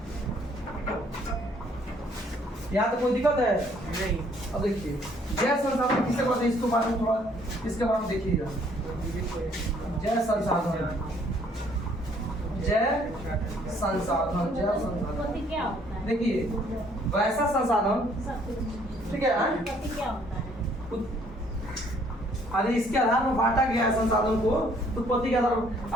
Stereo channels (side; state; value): both; normal; correlation 0.63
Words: यहाँ तो कोई दिक्कत है नहीं अब देखिए जय संसाधन किसके बारे में इसको बारे में थोड़ा इसके बारे में देखिएगा जय संसाधन उत्पत्ति क्या होता है? देखिए वैसा संसाधन ठीक है उत्पत्ति क्या होता है? अरे इसके आधार पर बांटा गया है संसाधन को उत्पत्ति के आधार पर